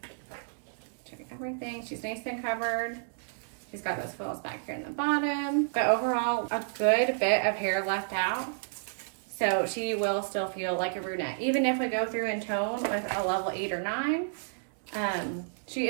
everything. She's nice and covered. She's got those foils back here in the bottom. But overall, a good bit of hair left out. So she will still feel like a brunette. Even if we go through in tone with a level 8 or 9, she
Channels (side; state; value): left; silent; digital silence